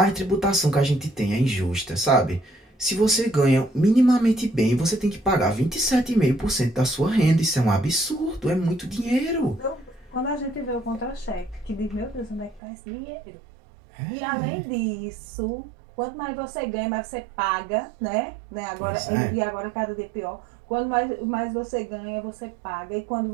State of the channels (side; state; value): left; drops out; at 12.6 s